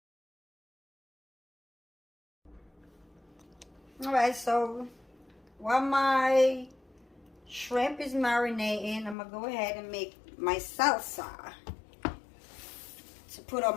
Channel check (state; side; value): drops out; right; at 9.2 s